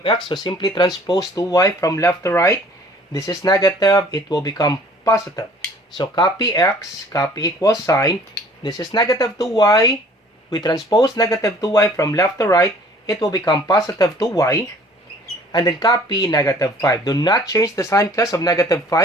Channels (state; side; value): normal; both; correlation 0.53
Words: x, so simply transpose 2y from left to right. This is negative, it will become positive. So copy x, copy equals sign. This is negative 2y. We transpose negative 2y from left to right. It will become positive 2y. And then copy negative 5. Do not change the sign, class, of negative